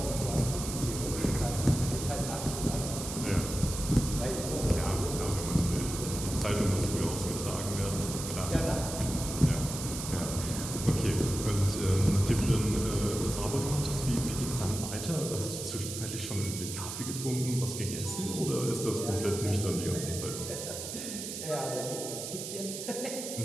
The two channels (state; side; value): noise; right; hiss, 7 dB below the sound